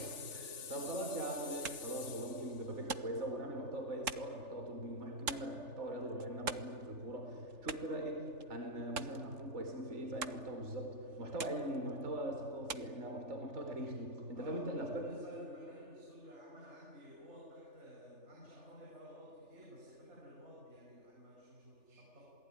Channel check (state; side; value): late; left; 3.4 ms